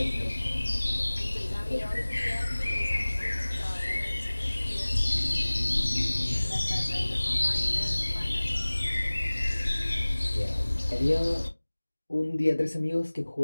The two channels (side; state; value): both; inverted; correlation -1.00